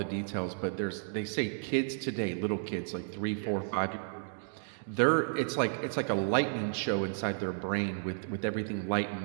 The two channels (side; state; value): left; silent; digital silence